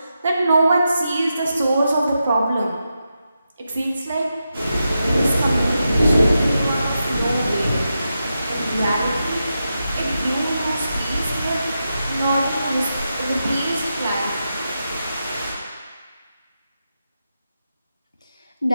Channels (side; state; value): both; inverted; correlation -0.88